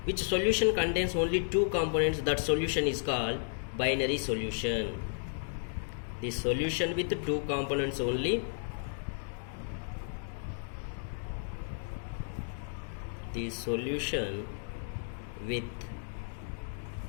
Which solution contains only 2 components? That solution is called binary solution. The solution with 2 components only. The solution with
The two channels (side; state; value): right; silent; digital silence